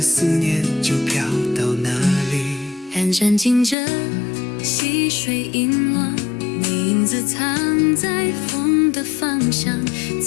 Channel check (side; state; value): right; drops out; at 3.8 s